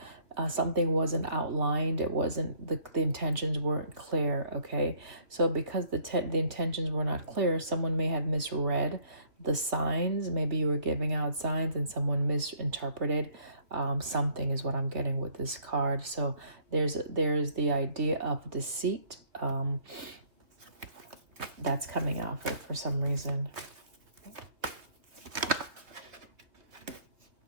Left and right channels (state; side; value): late; left; 2.7 ms